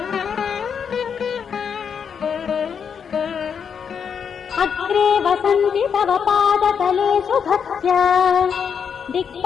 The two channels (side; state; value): right; quieter; 7.0 dB